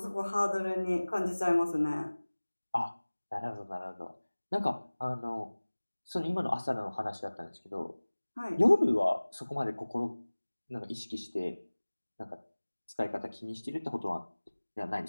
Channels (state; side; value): inverted; both; correlation -1.00